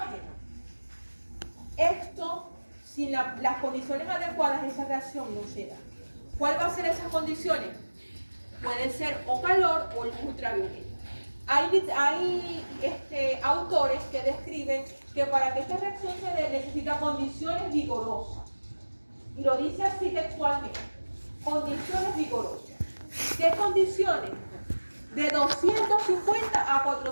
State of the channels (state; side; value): inverted; both; correlation -1.00